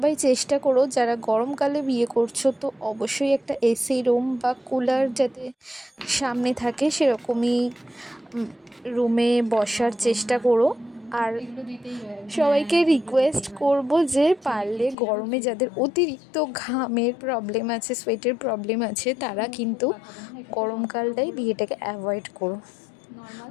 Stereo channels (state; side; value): drops out; right; at 15.0 s